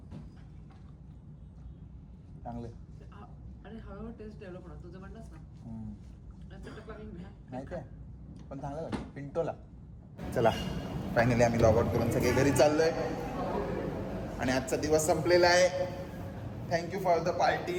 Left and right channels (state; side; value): identical; both; correlation 1.00